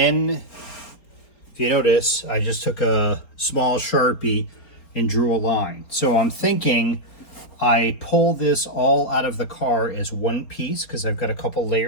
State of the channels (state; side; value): late; right; 4.4 ms